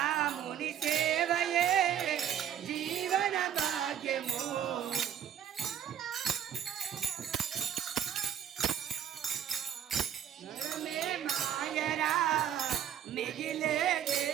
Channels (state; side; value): quieter; left; 9.7 dB